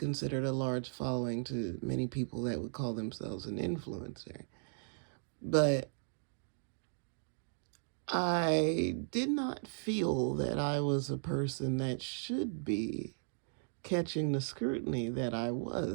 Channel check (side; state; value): left; silent; digital silence